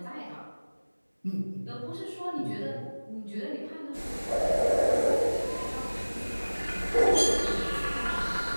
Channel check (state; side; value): inverted; both; correlation -1.00